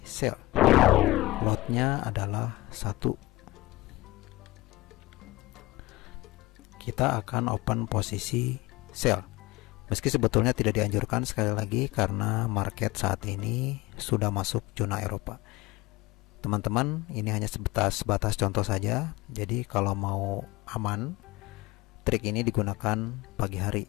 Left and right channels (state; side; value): quieter; right; 20.0 dB